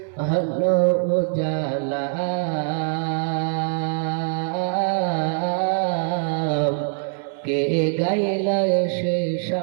হলো উজালা, কে গাইল এসে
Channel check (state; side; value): silent; left; 63 dB below the other